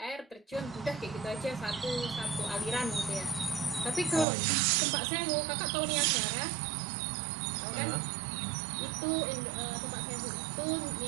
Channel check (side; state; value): left; drops out; at 4.2 s